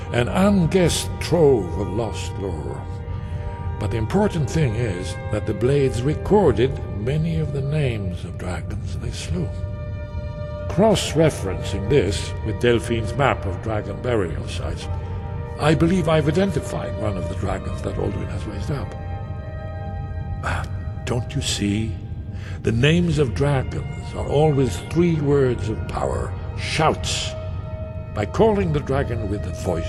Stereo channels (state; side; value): identical; both; correlation 1.00